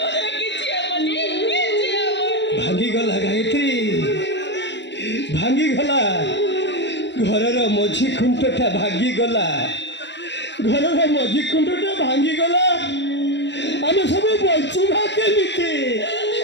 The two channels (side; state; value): right; late; 0.51 ms